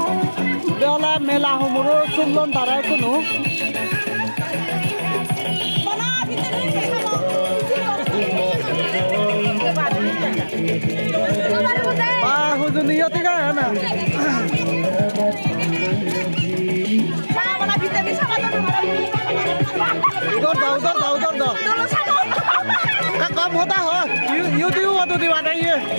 beola mela humuro sullon tarai kunu hujuniyo tiga na उधर दो का कम होता हो यू तो दिवा ये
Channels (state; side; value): inverted; both; correlation -1.00